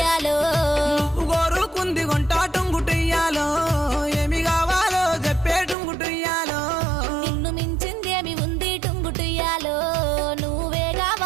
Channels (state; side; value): drops out; left; at 5.8 s